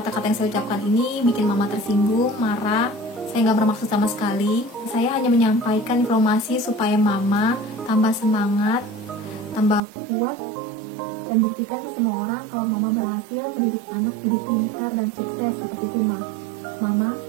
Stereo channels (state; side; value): drops out; left; at 9.8 s